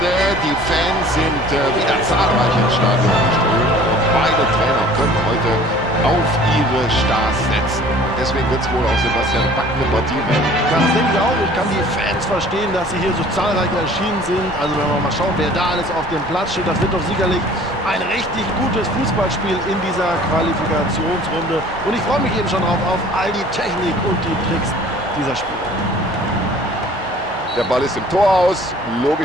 Die Fans sind wieder zahlreich ins Stadion geströmt und beide Trainer können heute auf ihre Stars setzen. Deswegen wird es wohl auch Sebastian packende Partie werden. Ja, das denke ich auch. Ich kann die Fans verstehen, dass sie hier so zahlreich erschienen sind. Also wenn wir mal schauen, wer da alles auf dem Platz steht, das wird doch sicherlich ein richtig gutes Fußballspiel in dieser Qualifikationsrunde. Und ich freue mich eben schon drauf auf all die Technik und die Tricks dieser Spieler. Der Ball ist im Tor aus.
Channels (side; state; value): both; normal; correlation 0.50